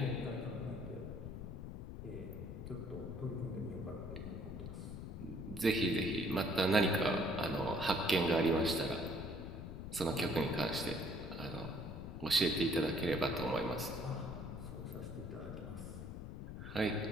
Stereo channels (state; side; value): noise; left; rumble, 8 dB below the sound